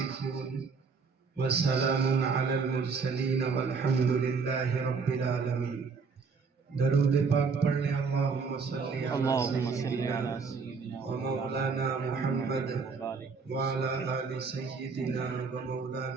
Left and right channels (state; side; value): quieter; left; 5.1 dB